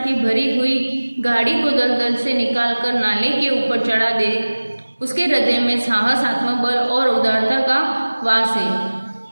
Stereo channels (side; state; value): both; inverted; correlation -1.00